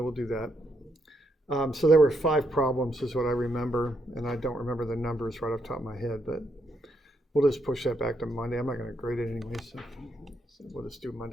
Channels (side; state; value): both; normal; correlation 0.77